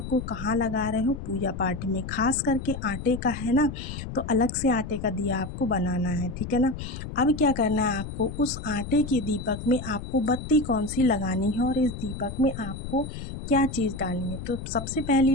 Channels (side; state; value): left; noise; rumble, 8 dB below the sound